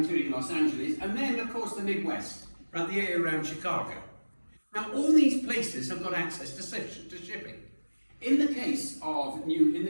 Los Angeles, and then of course the Midwest, right, the area around Chicago. Now all these places have got access to shipping. In the case of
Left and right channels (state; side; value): inverted; both; correlation -1.00